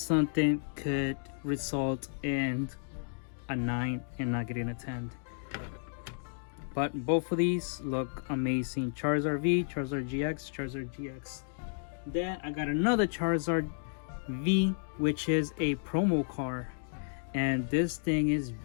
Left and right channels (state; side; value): silent; right; digital silence